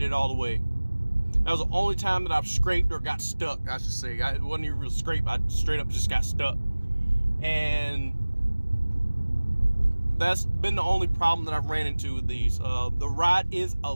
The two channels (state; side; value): inverted; both; correlation -1.00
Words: all the way. That was the only time that I've scraped or got stuck, I should say. It wasn't even real scrape. I straight up just got stuck. And that's been the only problem that I've ran into with these. The ride is a